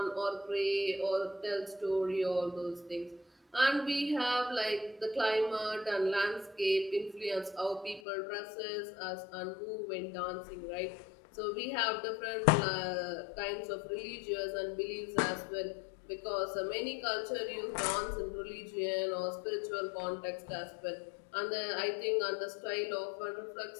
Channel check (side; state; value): right; drops out; at 8.0 s